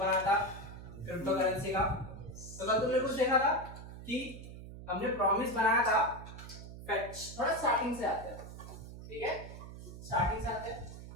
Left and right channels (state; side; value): noise; right; hum, 13 dB below the sound